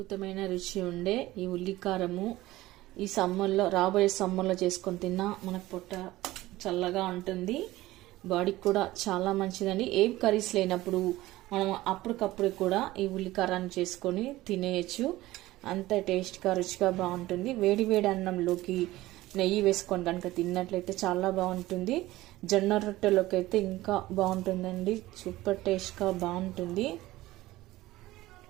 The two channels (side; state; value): left; quieter; 17.3 dB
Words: రుచి ఉండే ఈ ఉల్లికారము ఈ సమ్మర్లో, రాబోయే సమ్మర్లో చేసుకొని తిన్నా మనకు పొట్ట చల్లగా ఉంటుంది, బాడీకి కూడా చాలా మంచిదండి. ఏం కర్రీస్ లేనప్పుడు మనం అప్పటికప్పుడు కూడా ఈ ఉల్లికారాన్ని చేసుకొని తినేయచ్చు. అంత టేస్ట్గా రుచిగా బాగుంటుంది. వేడి వేడి అన్నంలోకి నెయ్యి వేసుకొని కనుక తిన్నట్లయితే చాలా బాగుంటుంది. జొన్న రొట్టెలోకి అయితే ఇంకా బాగుంటుందండి, సూపర్ టేస్ట్గా బాగుంటుంది.